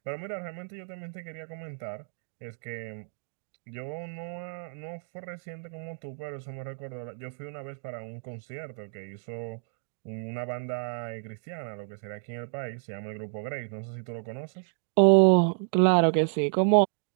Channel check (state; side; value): silent; left; digital silence